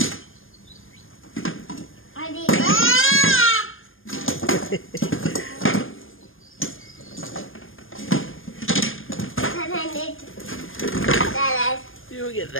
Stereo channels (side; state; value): right; late; 0.59 ms